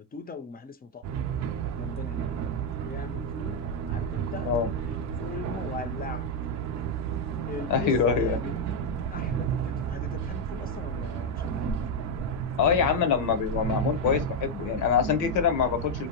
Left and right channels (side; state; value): both; normal; correlation 0.02